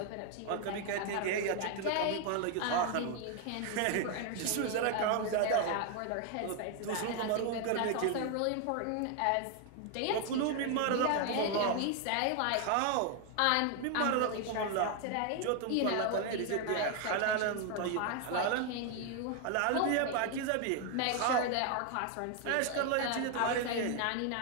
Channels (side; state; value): both; different; correlation 0.01